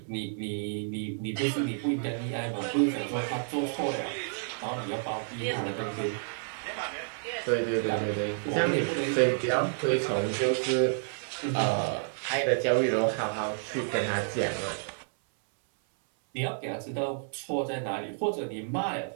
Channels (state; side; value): silent; left; 58 dB below the other